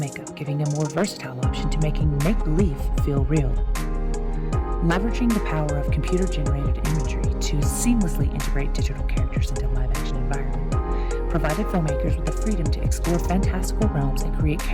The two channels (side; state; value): both; identical; correlation 1.00